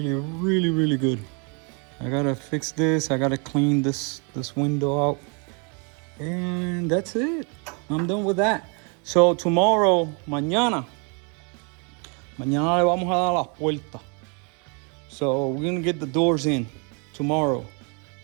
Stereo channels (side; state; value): left; quieter; 35.5 dB